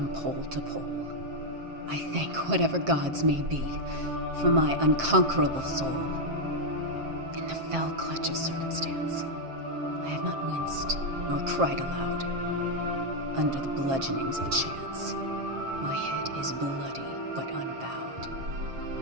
pole to pole. I thank whatever gods may be for my unconquerable soul. In the fell clutch of circumstance, I have not winced nor cried aloud. Under the bludgeonings of chance, my head is bloody but unbowed.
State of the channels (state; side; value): late; left; 7.5 ms